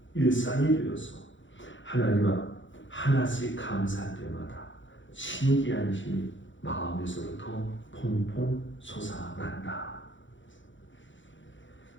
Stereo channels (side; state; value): right; late; 0.55 ms